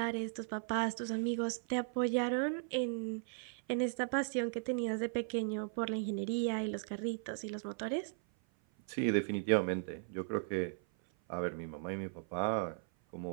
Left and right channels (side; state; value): left; silent; 53 dB below the other